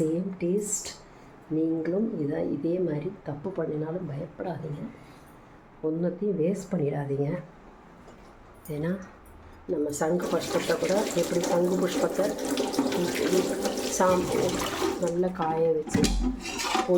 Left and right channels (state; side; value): identical; both; correlation 1.00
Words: டேஸ்ட். நீங்களும் இதே மாதிரி தப்பு பண்ணினாலும் பயப்படாதீங்க, ஒன்றத்தையும் வேஸ்ட் பண்ணிடாதீங்க. ஏன்னா நம்ம சங்கு புஷ்பத்தை கூட எப்படி சங்கு புஷ்பத்தை நல்லா காய வச்சு